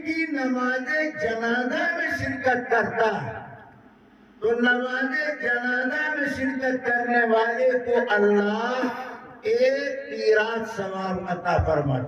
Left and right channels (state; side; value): identical; both; correlation 1.00